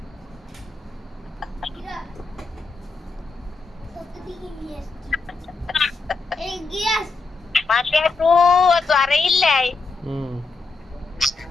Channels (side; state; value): right; quieter; 4.0 dB